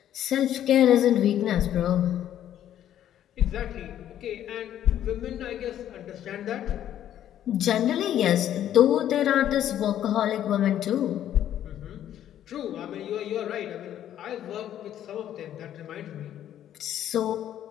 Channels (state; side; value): quieter; right; 11.1 dB